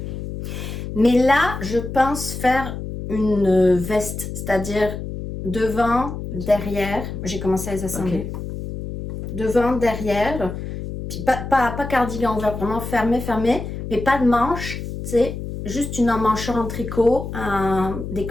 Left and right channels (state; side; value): noise; left; hum, 7 dB below the sound